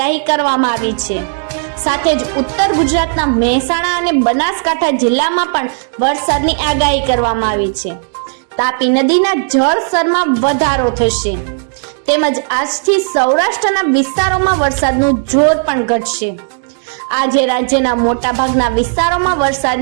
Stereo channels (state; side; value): silent; left; digital silence